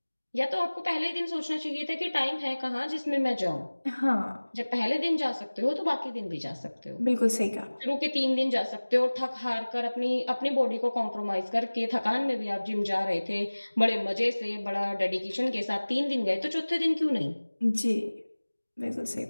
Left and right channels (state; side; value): inverted; both; correlation -1.00